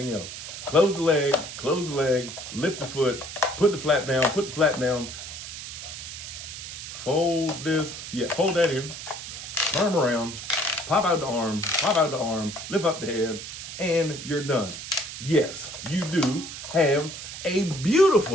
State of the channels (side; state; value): right; noise; hiss, 10 dB below the sound